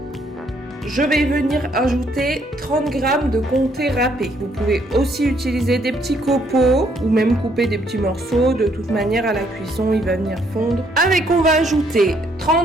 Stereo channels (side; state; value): both; normal; correlation 0.69